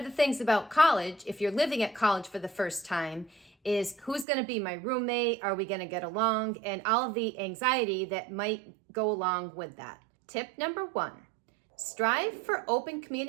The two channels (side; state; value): left; drops out; at 4.2 s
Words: the things about college, if you're living at college for the first time, is who's going to be my roommate? Are we going to get along? And all of the anxiety that might go along with that. Tip number 1, strive for open